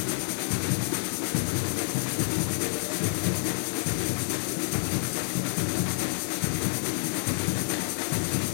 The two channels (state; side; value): silent; right; 59 dB below the other